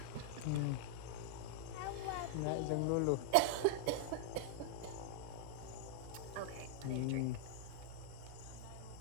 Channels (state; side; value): different; both; correlation -0.01